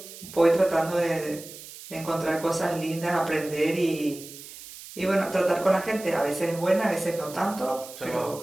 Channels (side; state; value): right; noise; hiss, 15 dB below the sound